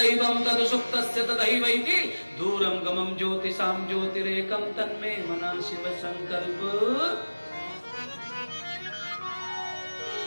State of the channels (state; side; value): inverted; both; correlation -1.00